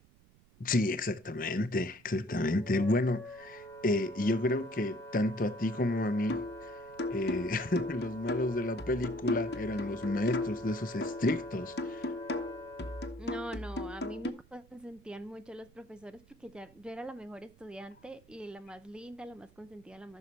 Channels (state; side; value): noise; right; rumble, 27 dB below the sound